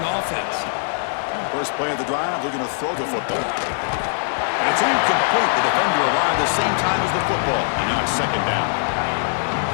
offense. First play of the drive, looking to throw the football. And it's incomplete. The defender arrived at the same time as the football, and now it's 2nd down.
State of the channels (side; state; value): right; silent; 65 dB below the other